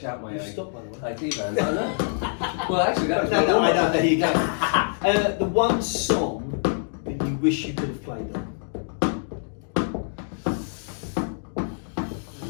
out my stop, by the way. IT bands. I know. Well, actually, that was I know. There you go. The one song that you wish you could have played on.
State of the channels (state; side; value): silent; right; digital silence